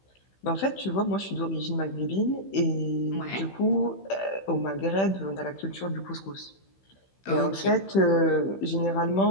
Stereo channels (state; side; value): late; right; 15 ms